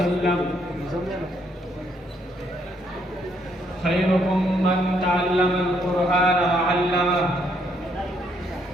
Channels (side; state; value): both; normal; correlation 0.72